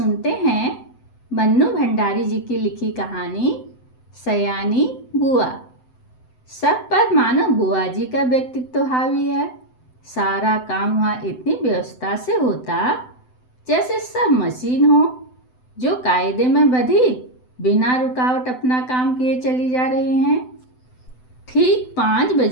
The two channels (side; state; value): right; late; 7.9 ms